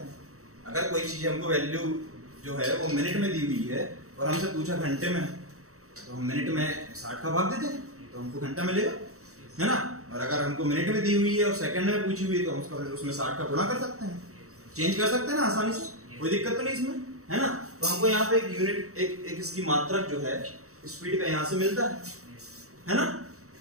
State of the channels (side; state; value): left; late; 0.64 ms